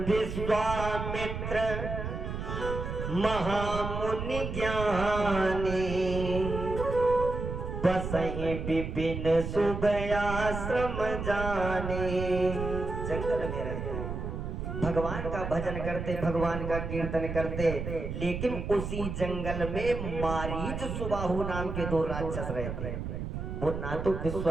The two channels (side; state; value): right; noise; rumble, 5 dB below the sound